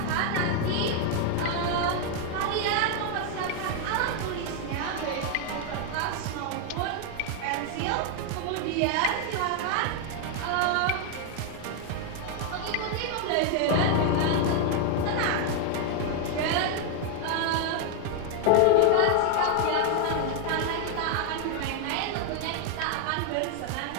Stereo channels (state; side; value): different; both; correlation 0.00